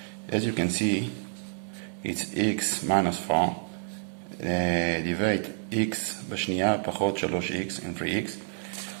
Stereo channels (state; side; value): silent; left; digital silence